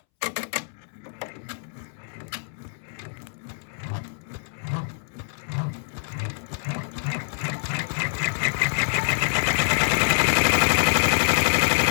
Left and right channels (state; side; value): silent; right; 61 dB below the other